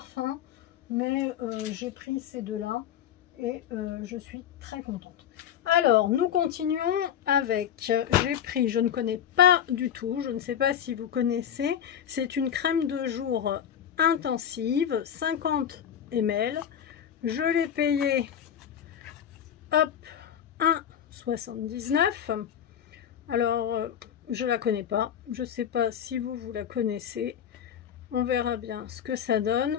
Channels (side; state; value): right; quieter; 9.2 dB